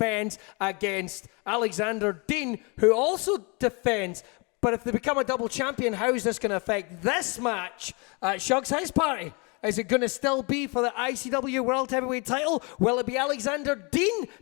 against Alexander Dean, who also defends. But if they become a double champion, how is this going to affect this match at Shug's House Party? Is it going to still be for the ICW World Heavyweight title? Will it be Alexander Dean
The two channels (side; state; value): right; quieter; 30.9 dB